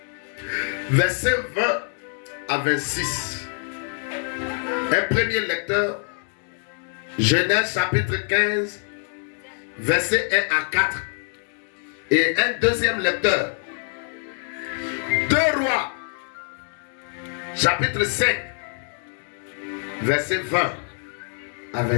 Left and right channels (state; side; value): silent; right; 62 dB below the other